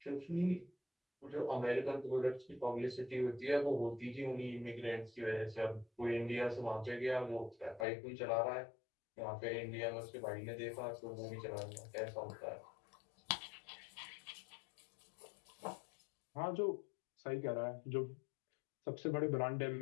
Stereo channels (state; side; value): drops out; right; at 7.9 s